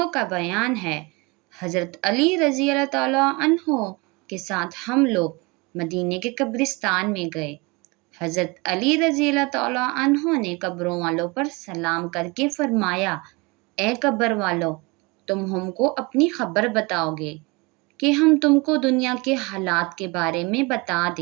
का बयान है, हज़रत अली रज़ी अल्लाह ताला अन्हो के साथ हम लोग मदीने के कब्रिस्तान में गए। हज़रत अली रज़ी अल्लाह तआला अन्हो ने कब्रों वालों पर सलाम करके फरमाया, ए कब्र वालों, तुम हमको अपनी खबर बताओगे कि हम तुमको दुनिया के हालात के बारे में बता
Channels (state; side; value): quieter; left; 26.5 dB